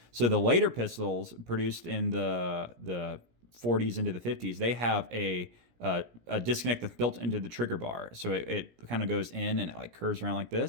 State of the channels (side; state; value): left; late; 17 ms